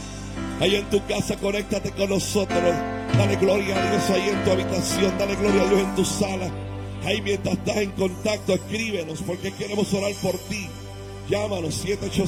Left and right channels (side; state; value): both; identical; correlation 1.00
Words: Ahí en tu casa, conéctate con nosotros. Dale gloria a Dios ahí en tu habitación. Dale gloria a Dios en tu sala. Ahí mientras estás en contacto, escríbenos porque queremos orar por ti. Llámanos